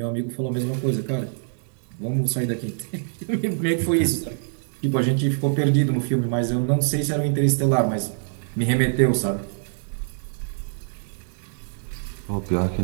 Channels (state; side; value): silent; left; digital silence